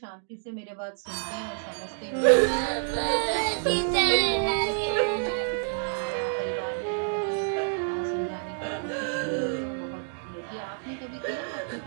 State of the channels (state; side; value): silent; left; digital silence